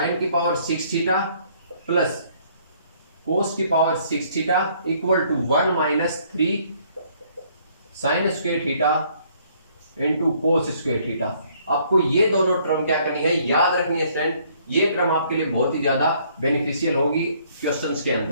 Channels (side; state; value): both; inverted; correlation -0.64